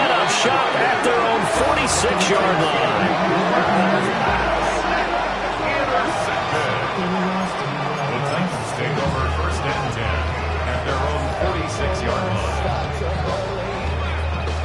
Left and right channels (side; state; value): both; identical; correlation 1.00